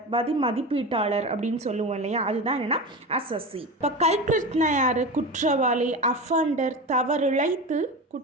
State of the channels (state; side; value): normal; both; correlation 0.25